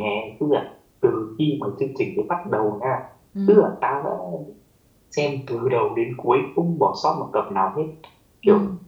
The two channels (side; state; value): both; identical; correlation 1.00